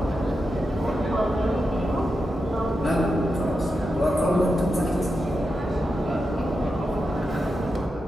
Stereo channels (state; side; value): normal; both; correlation 0.88